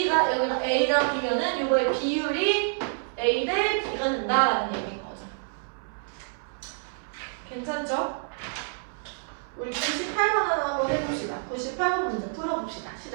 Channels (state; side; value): silent; left; 60 dB below the other